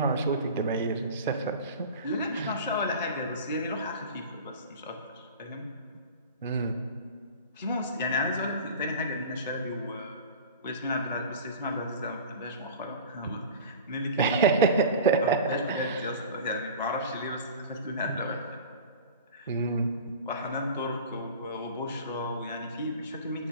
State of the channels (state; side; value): inverted; both; correlation -0.36